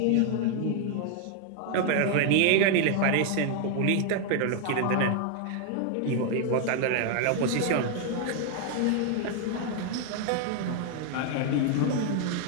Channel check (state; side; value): different; both; correlation 0.00